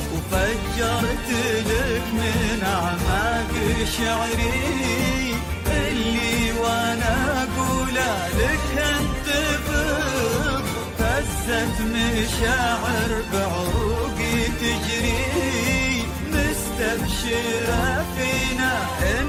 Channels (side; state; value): both; identical; correlation 1.00